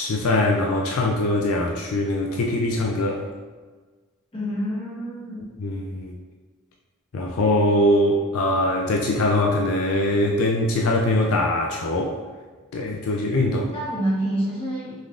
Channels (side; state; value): both; normal; correlation 0.33